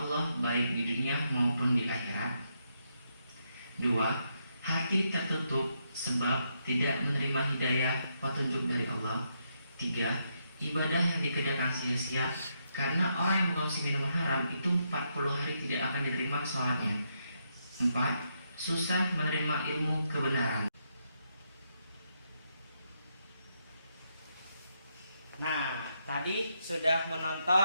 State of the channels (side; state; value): both; inverted; correlation -0.79